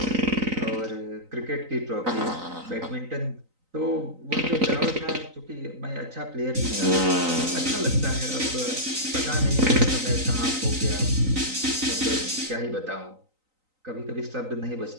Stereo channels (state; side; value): late; left; 3.9 ms